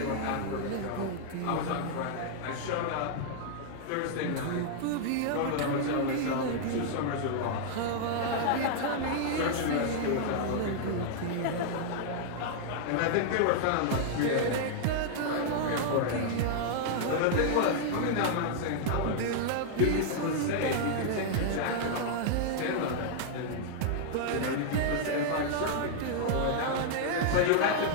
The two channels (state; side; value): different; both; correlation -0.01